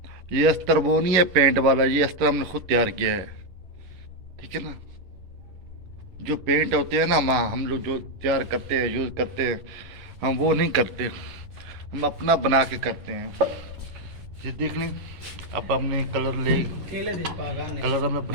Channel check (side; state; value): left; late; 11 ms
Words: ये अस्तर वो नहीं है पेंट वाला, ये अस्तर हमने खुद तैयार किया है, ठीक है ना। जो पेंट होते हैं ना हम लोग जो तैयार करते हैं यूज़ करते हैं, हम वो नहीं करते, हम अपना बना के करते हैं। ये देख लें, अब हमने कलर हमने